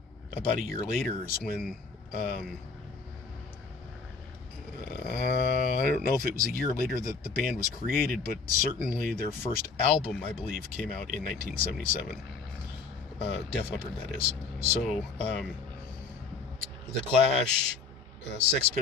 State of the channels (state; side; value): quieter; right; 4.6 dB